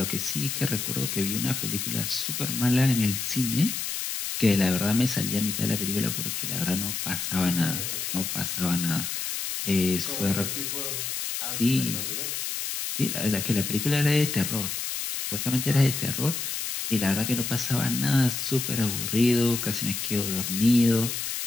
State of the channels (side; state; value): left; noise; hiss, 3 dB below the sound